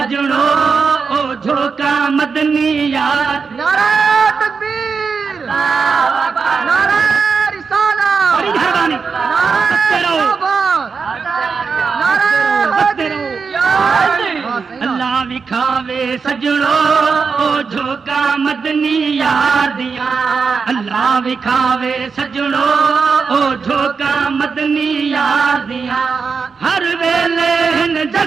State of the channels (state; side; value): quieter; left; 5.3 dB